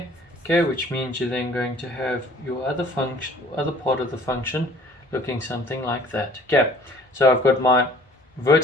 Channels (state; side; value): normal; both; correlation 0.53